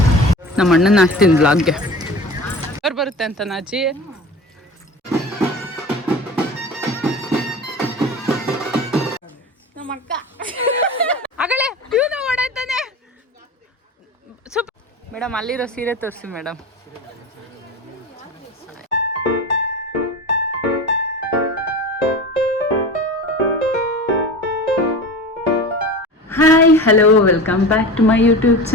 ನಮ್ಮ ಅಣ್ಣನ ಹಾಕ್ತೀನಿ ಬ್ಲಾಗ್ಗೆ. ಅವ್ರು ಬರುತ್ತೆ ಅಂತ ನಾಚಿ. ನಮ್ಮ ಅಕ್ಕ ಆಗಲೇ ಇವನು ಓಡಾಡ್ತಾನೆ. ಮೇಡಮ್ ಅಲ್ಲಿರೋ ಸೀರೆ ತೋರಿಸಿ madam. Hi hello welcome back to my YouTube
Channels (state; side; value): normal; both; correlation 0.33